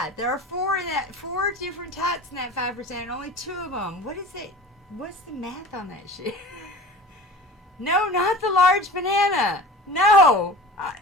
there are 4 in that, 4 different types in that 5%, and only 2 of them. What is it? What's the math on that shit? No, not the large banana. No,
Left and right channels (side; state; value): both; normal; correlation 0.39